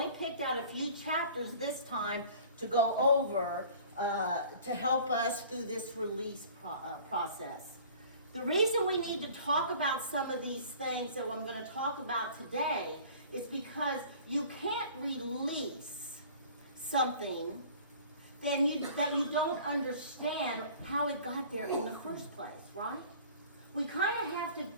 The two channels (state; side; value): inverted; both; correlation -0.47